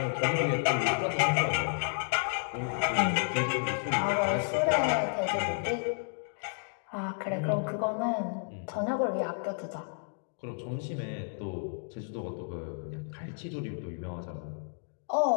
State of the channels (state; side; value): silent; right; digital silence